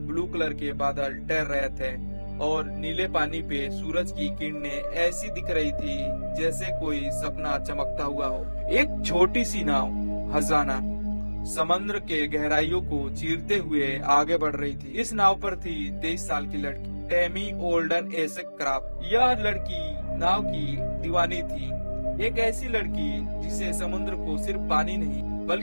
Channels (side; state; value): both; inverted; correlation -1.00